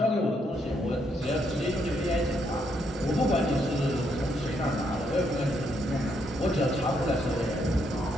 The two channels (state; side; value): normal; both; correlation 0.75